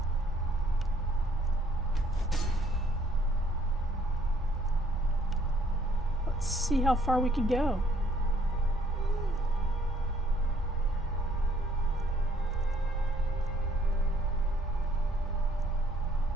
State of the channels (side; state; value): both; normal; correlation 0.64